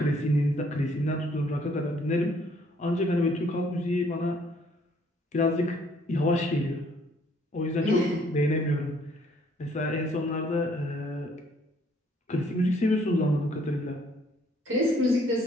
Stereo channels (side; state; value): both; normal; correlation 0.63